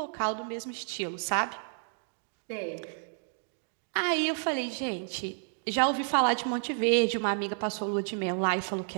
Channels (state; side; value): silent; left; digital silence